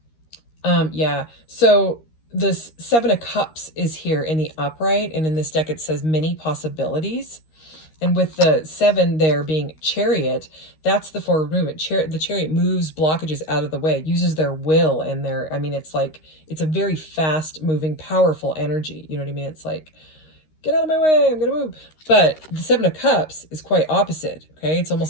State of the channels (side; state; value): right; late; 13 ms